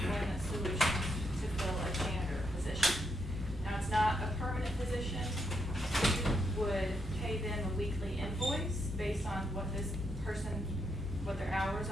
Solutions to fill a janitor position. Now, it's not a permanent position. We would pay them a weekly invoice based on what this person, what their hours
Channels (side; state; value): both; normal; correlation 0.79